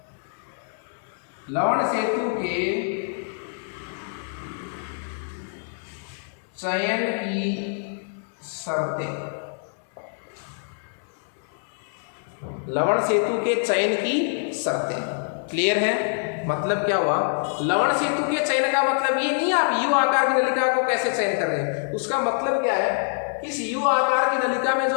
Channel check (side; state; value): right; silent; digital silence